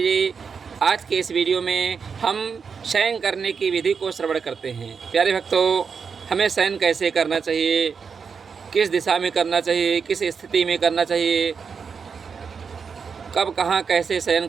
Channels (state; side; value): quieter; left; 5.9 dB